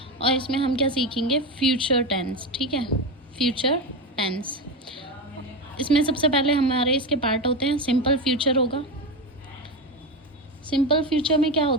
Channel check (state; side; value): normal; both; correlation 0.17